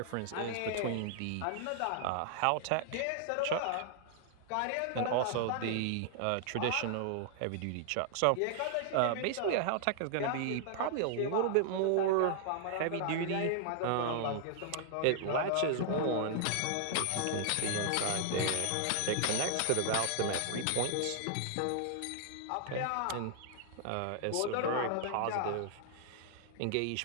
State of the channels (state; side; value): different; both; correlation -0.01